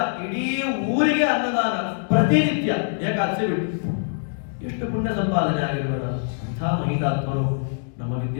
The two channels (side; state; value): right; silent; digital silence